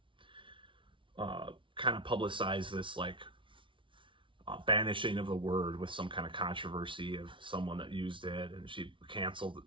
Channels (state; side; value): late; left; 0.25 ms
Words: kind of publicized this banishing of the word with some kind of controversy of someone that used it, and she